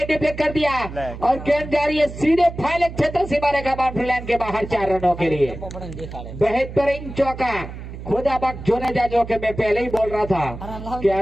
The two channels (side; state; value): right; noise; hum, 11 dB below the sound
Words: डिफ्लेक्ट कर दिया और गेंद जा रही है सीधे फाइनल क्षेत्र सीमा रेखा बाउंड्री लाइन के बाहर 4 रनों के लिए बेहतरीन चौका खुदा बख्श जोने जा जो कि मैं पहले ही बोल रहा था कि